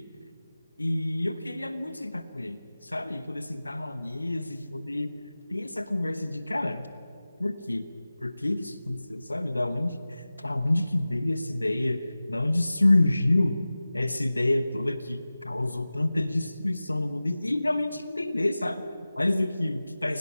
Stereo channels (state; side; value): inverted; both; correlation -0.97